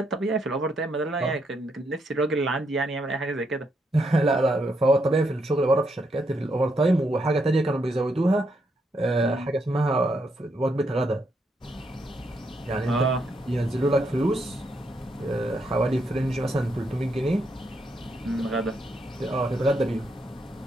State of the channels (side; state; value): both; normal; correlation 0.78